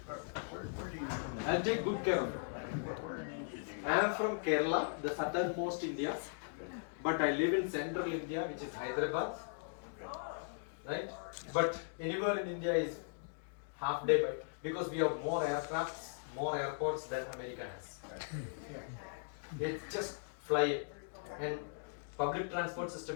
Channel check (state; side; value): silent; right; digital silence